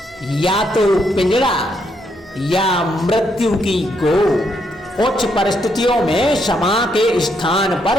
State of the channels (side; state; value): both; normal; correlation 0.76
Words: या तो पिंजड़ा या मृत्यु की गोद। कुछ परिस्थितियों में क्षमा के स्थान